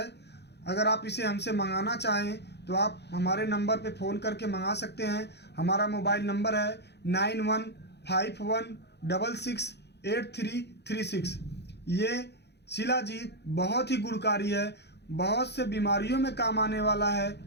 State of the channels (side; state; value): right; late; 0.49 ms